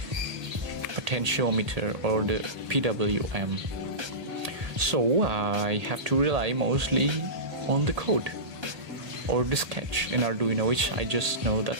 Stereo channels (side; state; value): left; late; 1.8 ms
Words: potentiometer or the PWM. So I have to rely mostly on the code or the sketch in Arduino, which I just know that